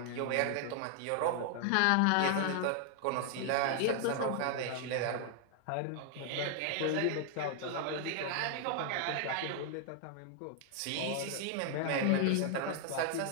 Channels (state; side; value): different; both; correlation 0.00